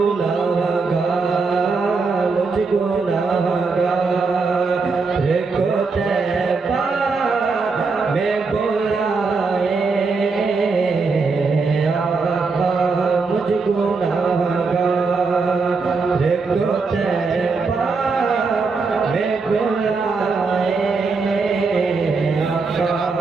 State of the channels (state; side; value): quieter; left; 4.4 dB